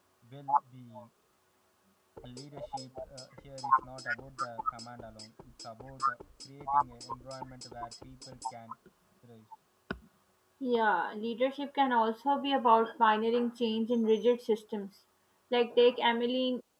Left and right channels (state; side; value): identical; both; correlation 1.00